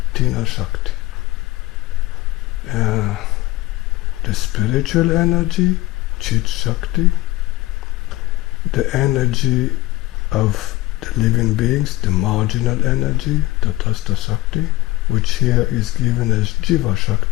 Tina Shakti. The spiritual energy, Chit Shakti, the energy of the living beings, the marginal energy, Tatastha Shakti, which here is given as Jiva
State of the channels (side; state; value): right; quieter; 18.7 dB